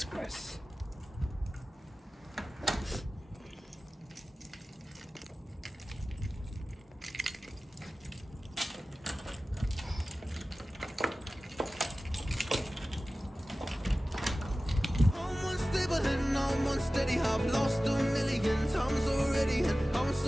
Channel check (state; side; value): normal; both; correlation 0.96